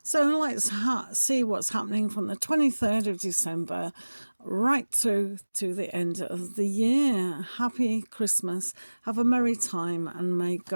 So let's see what's happening from the 23rd of December right through to the end of the year. Happy Christmas. Have a merry time and may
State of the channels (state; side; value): inverted; both; correlation -1.00